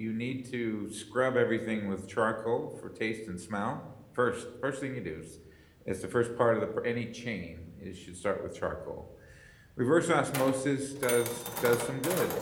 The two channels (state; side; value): identical; both; correlation 1.00